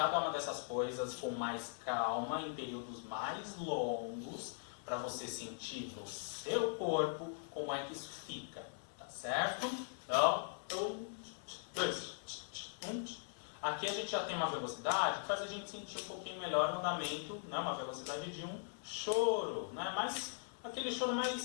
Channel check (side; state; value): right; silent; digital silence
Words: uma dessas coisas com mais calma, em períodos mais longos, para você sentir no seu corpo como é que isso fica, tá certo? Então, 1, 2, 1. Aqui a gente já tem uma velocidade que faz a gente sentir um pouquinho melhor o andamento, né? Uma velocidade de um choro, né? Mas aquele choro